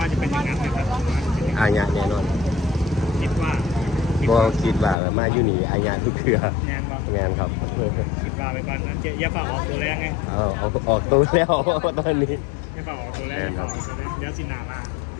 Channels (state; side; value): drops out; right; at 5.0 s